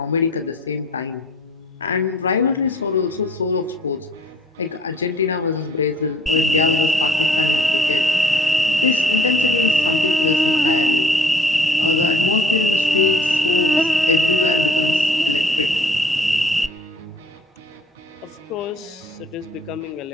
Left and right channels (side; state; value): both; normal; correlation 0.55